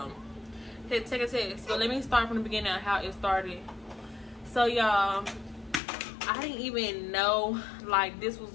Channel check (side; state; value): right; drops out; at 5.8 s